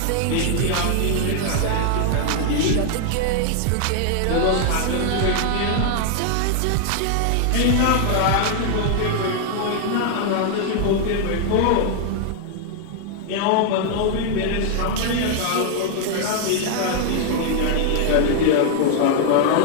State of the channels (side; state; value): both; different; correlation 0.00